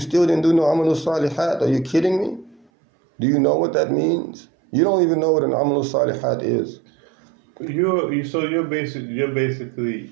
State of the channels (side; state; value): left; drops out; at 2.7 s